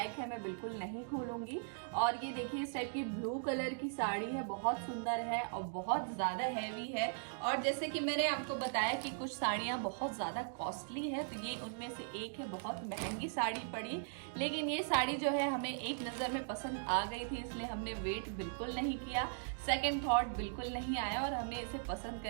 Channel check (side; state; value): left; silent; digital silence